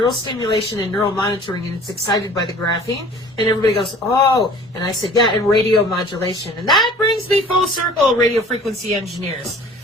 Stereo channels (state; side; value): normal; both; correlation 0.47